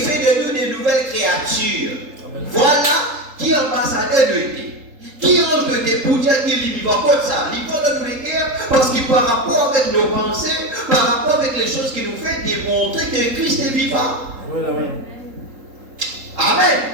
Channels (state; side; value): late; left; 3.8 ms